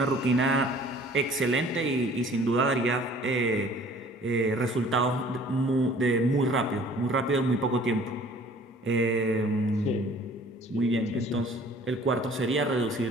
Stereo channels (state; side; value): normal; both; correlation 0.52